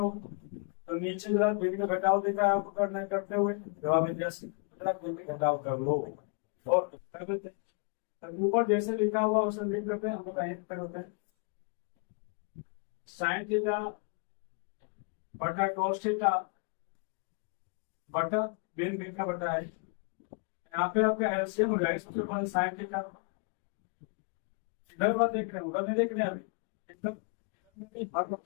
तो नीचे जरा दिन का घटाव दिखा है आपको करना करते हुए, जवाब है यस, जरा दिन का घटाव कर लो। ओके, कर देते हैं, ऊपर जैसे लिखा हुआ उसे लिख देते हैं, हम लोग कहीं पर होते हैं साइन थीटा बटा कॉस थीटा बटा बिन बिन का बटा है, यहाँ पे आपका एलसीएम हो जाएगा, सबसे पहले साइन थीटा, इधर बात देख रहे हैं उधर नहीं देख रहे हैं अभी, इधर इधर में भी हर,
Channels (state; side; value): quieter; right; 38.9 dB